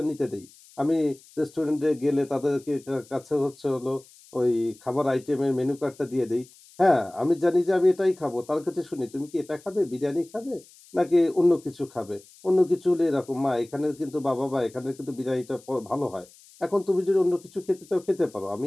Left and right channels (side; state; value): left; noise; hiss, 25 dB below the sound